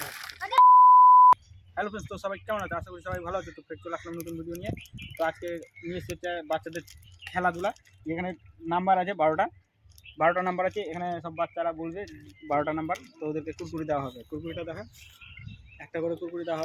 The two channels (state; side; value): identical; both; correlation 1.00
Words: হ্যালো ফ্রেন্ডস, তো সবাই কেমন আছে? আশা করি সবাই ভালো আছে। তো ফের চলে আসলাম নতুন ভিডিও নিয়ে। তো আজকে নিয়ে এসেছে বাচ্চাদের খেলাধুলা। এখানে নাম্বার আছে 12টা নাম্বার আছে। এখানে সব বাচ্চারা বলবে 12টা নাম্বার, তো ওদেরকে কুরকুরি দেওয়া হবে। কুরকুরিটা দেখা, একটা করে কুরকুরি দেওয়া